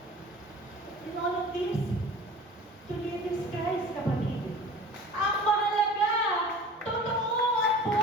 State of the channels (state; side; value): normal; both; correlation 0.42